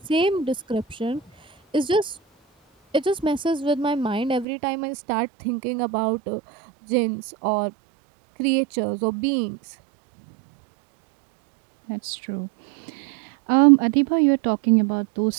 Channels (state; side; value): drops out; left; at 4.5 s